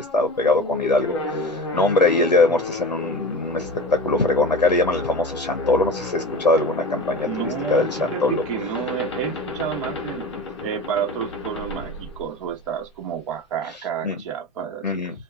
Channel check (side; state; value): both; normal; correlation 0.32